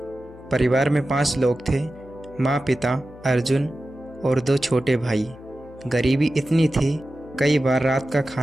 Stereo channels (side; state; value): left; noise; hum, 21 dB below the sound